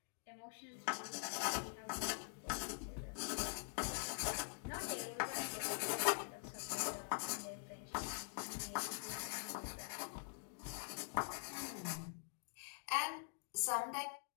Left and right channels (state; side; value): silent; right; digital silence